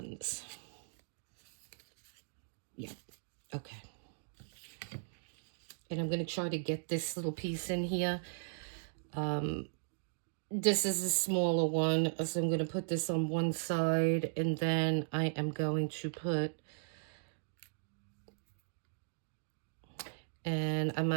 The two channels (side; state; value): left; silent; digital silence